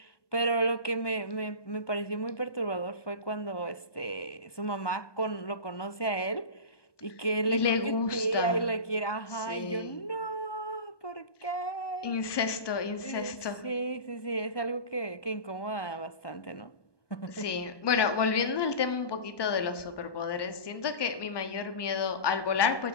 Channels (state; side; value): late; right; 1.2 ms